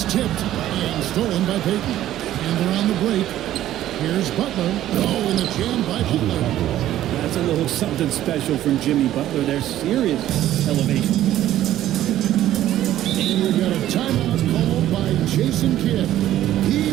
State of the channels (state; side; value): quieter; left; 13.0 dB